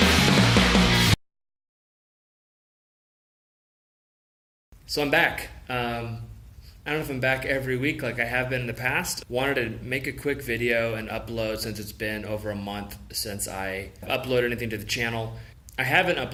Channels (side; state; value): both; identical; correlation 1.00